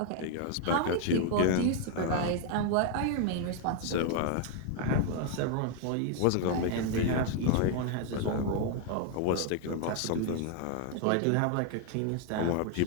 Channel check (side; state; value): both; different; correlation 0.00